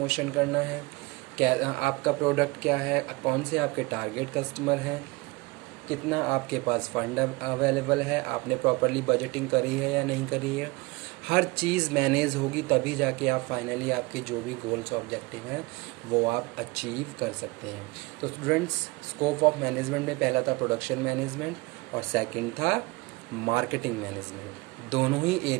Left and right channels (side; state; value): left; quieter; 23.8 dB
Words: करना है, क्या आपका प्रोडक्ट क्या है, कौन से आपके टारगेट कस्टमर हैं, कितना आपके पास फंड अवेलेबल है, आपने प्रॉपरली बजटिंग करी है या नहीं करी है। हर चीज़ मैनेज होगी तभी जाके आप फाइनली आपके जो भी गोल्स ऑब्जेक्टिव हैं वो आप अचीव कर सकते हैं। तो स्टूडेंट्स स्कोप ऑफ मैनेजमेंट में पहला था प्रोडक्शन मैनेजमेंट और सेकंड था मार्केटिंग मैनेजमेंट। दोनों ही